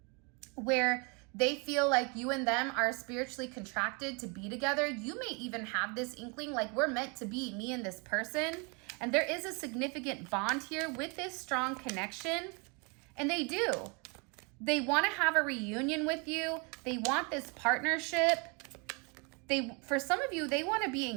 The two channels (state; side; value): quieter; left; 32.2 dB